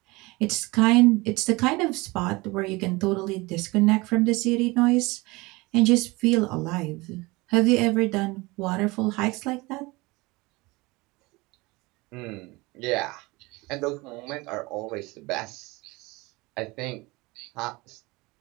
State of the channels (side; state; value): left; quieter; 23.3 dB